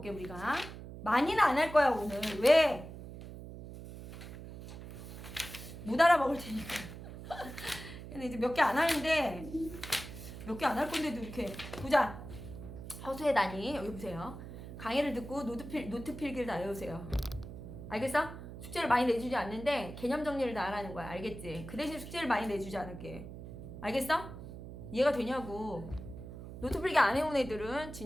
우리가 많이는 안 할 거야 오늘. 왜? 못 알아먹을 테니까. 근데 이제 몇 개 안 하는데 몇 개 안 할 건데도 이렇게 보자. 허수의 단위 여기 보세요. 강의를 듣고 노트 필기를 다 외우세요. 알겠어? 숙제를 많이 내주지 않는데 개념 정리를 다 하라는 거야. 알겠지? 그 대신 숙제를 많이 내주지 않을게. 알겠어? 이해가 되냐고. 노트 필기 안 해온 애들은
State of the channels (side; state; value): right; noise; hum, 12 dB below the sound